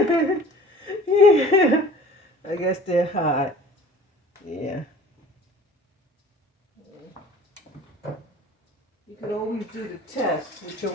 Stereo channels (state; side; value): normal; both; correlation 0.46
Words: I guess they're hot. Yeah. You can always do the test with your